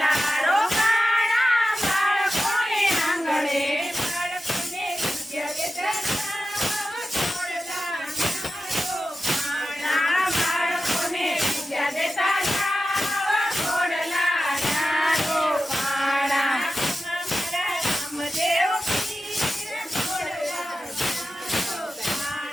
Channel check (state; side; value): normal; both; correlation 0.92